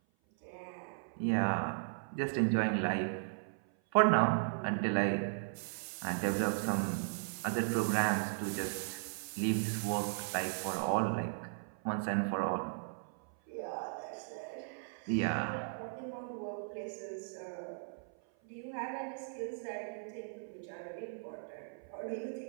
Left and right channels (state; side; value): silent; left; 53 dB below the other